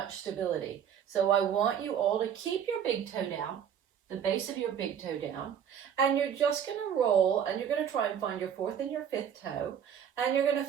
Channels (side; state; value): left; quieter; 8.6 dB